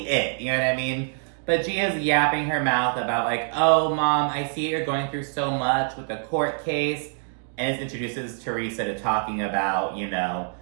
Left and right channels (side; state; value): left; silent; digital silence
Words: it, you know what I mean? But Gia's yapping her mouth about, like, oh, Mom, I see you're going through so much with the court case, and it introduces Teresa to talking about, you know,